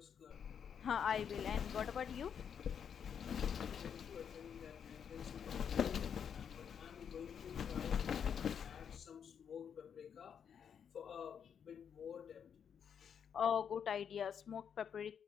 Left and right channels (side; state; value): right; quieter; 7.7 dB